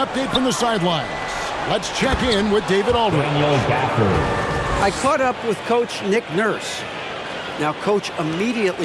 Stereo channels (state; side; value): identical; both; correlation 1.00